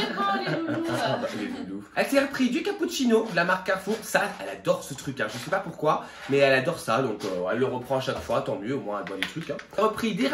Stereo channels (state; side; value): identical; both; correlation 1.00